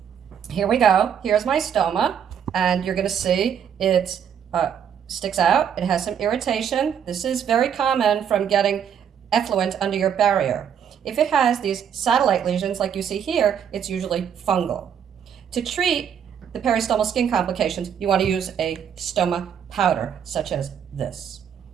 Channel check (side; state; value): left; quieter; 8.3 dB